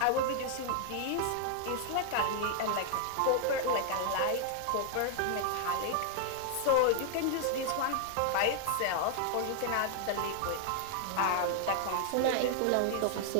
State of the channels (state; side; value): different; both; correlation 0.00